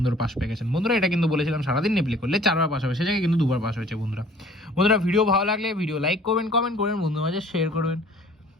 পাস পেয়ে গেছেন। বন্ধুরা এটা কিন্তু বলেছিলাম সারাদিন নেপ্লে করলে 4বার পাস হবে, সে জায়গায় কিন্তু 2বার পাস হয়েছে। বন্ধুরা ভিডিও ভালো লাগলে ভিডিও লাইক করবেন, কমেন্ট করবেন, বন্ধুদের মাঝে শেয়ার করবেন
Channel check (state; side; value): normal; both; correlation 0.53